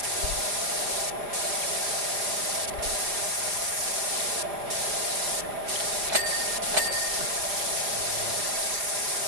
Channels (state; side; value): late; left; 4.9 ms